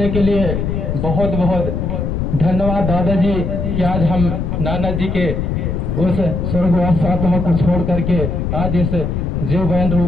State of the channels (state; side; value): noise; left; rumble, 2 dB below the sound